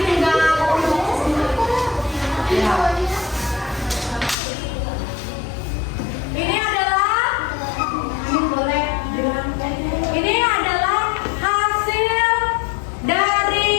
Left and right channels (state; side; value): drops out; right; at 4.4 s